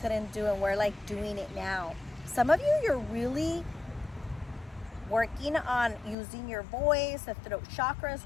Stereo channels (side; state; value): right; drops out; at 6.2 s